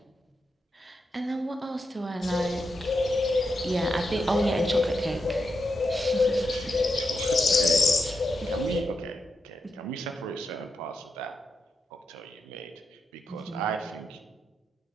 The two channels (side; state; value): both; normal; correlation 0.85